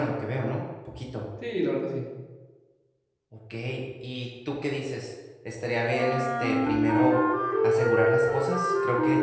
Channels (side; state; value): both; identical; correlation 1.00